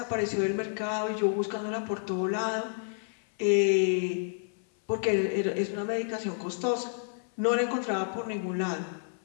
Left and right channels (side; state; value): right; silent; 56 dB below the other